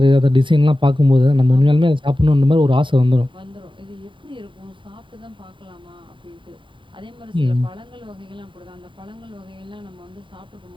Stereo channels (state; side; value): late; left; 0.24 ms